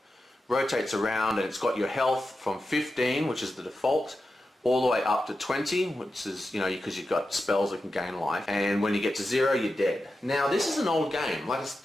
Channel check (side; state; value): both; normal; correlation 0.91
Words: rotates around, and it's got your health from 15, which is the default, all the way up to 20, which is, because you've got spells that can gain life, and when you get to 0, you're dead. Now, this is an old game, like it's